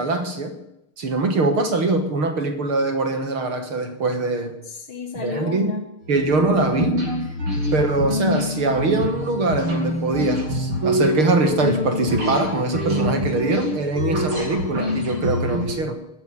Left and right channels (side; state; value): left; late; 6.5 ms